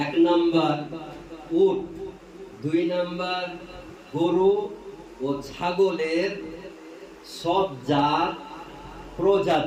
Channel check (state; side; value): identical; both; correlation 1.00